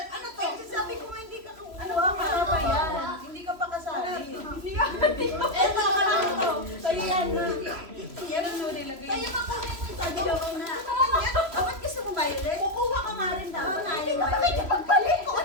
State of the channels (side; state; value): left; late; 3.0 ms